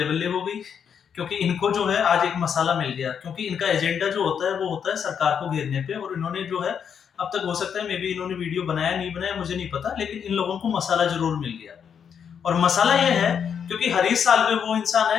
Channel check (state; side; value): quieter; right; 7.5 dB